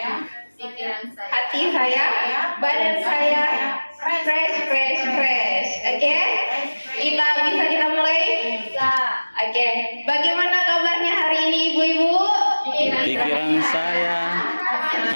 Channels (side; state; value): both; inverted; correlation -1.00